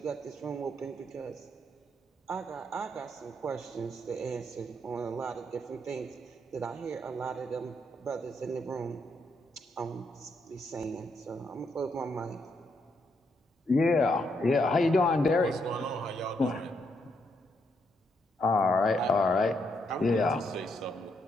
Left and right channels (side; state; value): both; normal; correlation 0.77